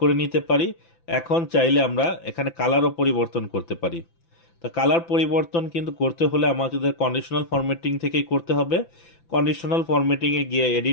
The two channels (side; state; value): right; late; 5.9 ms